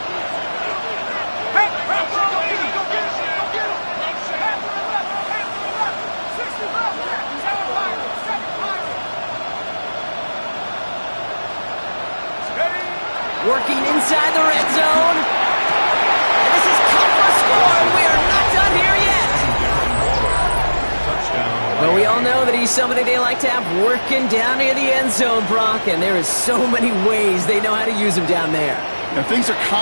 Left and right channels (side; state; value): both; inverted; correlation -1.00